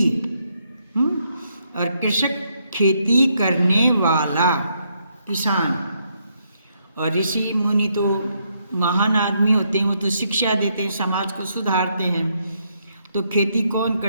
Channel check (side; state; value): both; inverted; correlation -0.76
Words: और कृषक खेती करने वाला किसान, और ऋषि मुनि तो महान आदमी होते हैं, वो तो शिक्षा देते हैं, समाज को सुधारते हैं। तो खेती कौन